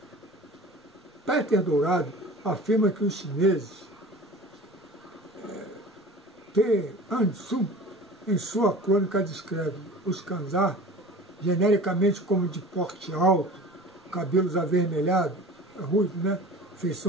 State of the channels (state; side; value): normal; both; correlation 0.39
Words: Peter Dourado afirma que os chineses, Te Ansun, em sua crônica descreve os Khanzar genericamente como de porte alto, cabelos avermelhados, ruivos, né?